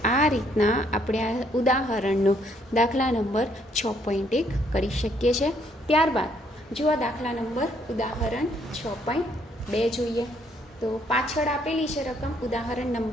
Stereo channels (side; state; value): both; normal; correlation 0.68